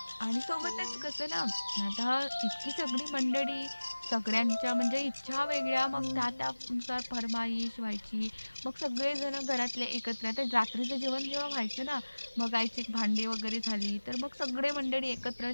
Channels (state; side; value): inverted; both; correlation -1.00